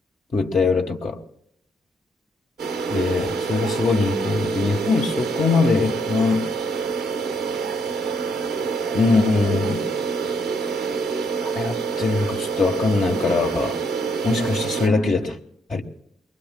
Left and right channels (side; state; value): both; normal; correlation 0.73